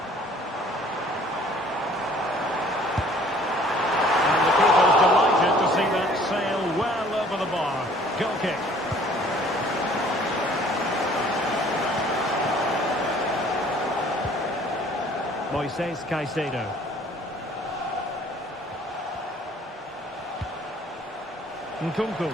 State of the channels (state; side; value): normal; both; correlation 0.55